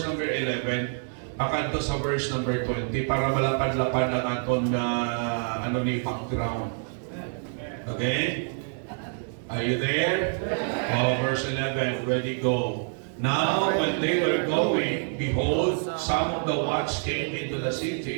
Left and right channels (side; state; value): left; silent; 59 dB below the other